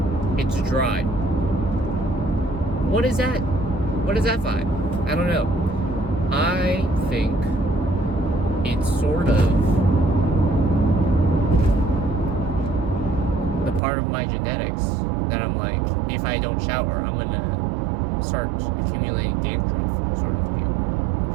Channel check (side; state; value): left; drops out; at 13.8 s